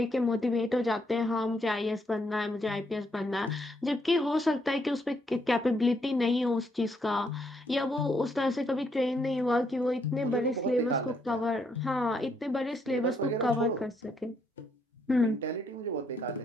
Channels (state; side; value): normal; both; correlation 0.74